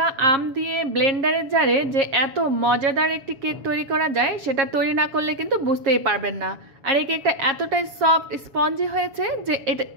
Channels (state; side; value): late; left; 7.4 ms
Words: আম দিয়ে ব্লেন্ডারের জারে যে এত মজাদার একটি কেক তৈরি করা যায় সেটা তৈরি না করলে কিন্তু বুঝতেই পারবেন না। আর এই কেকটা এতটাই সফট স্পঞ্জি হয়েছে যে এটা